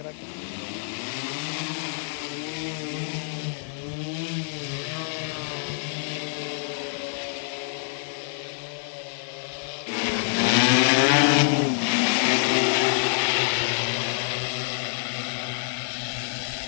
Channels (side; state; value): right; silent; digital silence